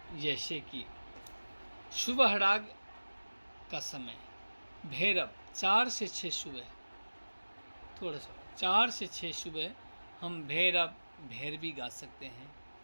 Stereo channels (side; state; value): both; inverted; correlation -1.00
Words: जैसे कि सुबह राग का समय, भैरव 4 से 6 सुबह, थोड़ा सा 4 से 6 सुबह हम भैरव भैरवी गा सकते हैं,